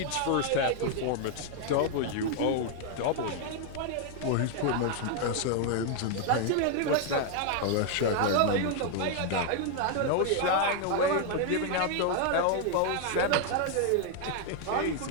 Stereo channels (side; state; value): both; different; correlation 0.00